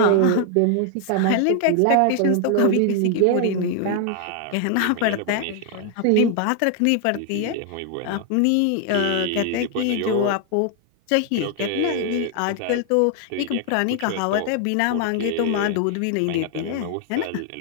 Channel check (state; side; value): different; both; correlation 0.00